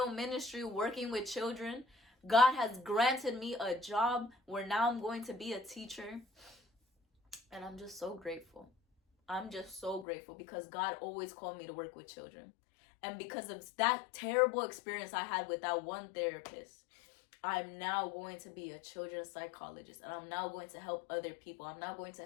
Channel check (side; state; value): right; drops out; at 10.1 s